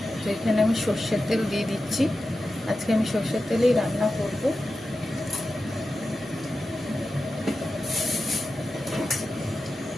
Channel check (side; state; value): both; normal; correlation 0.92